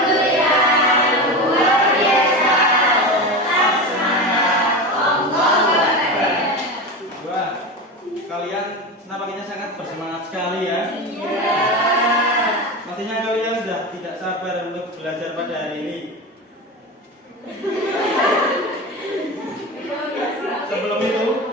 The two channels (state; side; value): normal; both; correlation 0.23